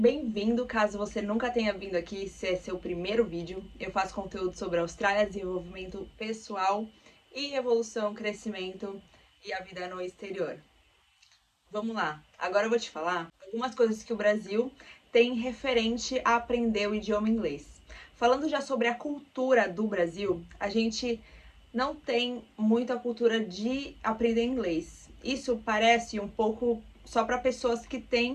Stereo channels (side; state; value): both; identical; correlation 1.00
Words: caso você nunca tenha vindo aqui, se é seu primeiro vídeo. Eu faço conteúdo sobre Austrália, desenvolvimento pessoal e evolução, crescimento e a vida no exterior. Vamos lá, agora eu vou te falar algumas coisas que o Brasil tem referente a aprender o idioma inglês. Falando já sobre a cultura do Brasil, a gente não tem muita cultura de aprender inglês. Isso parece um pouco só para pessoas que